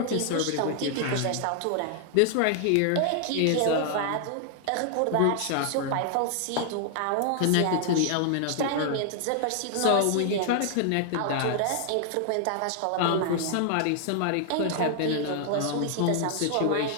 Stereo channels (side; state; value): both; different; correlation 0.00